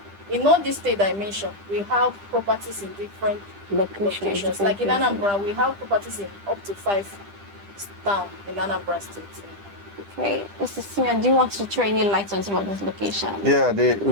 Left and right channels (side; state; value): left; late; 10 ms